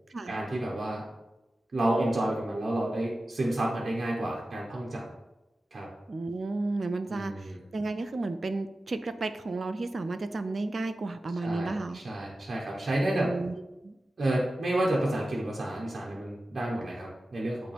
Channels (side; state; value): both; normal; correlation 0.94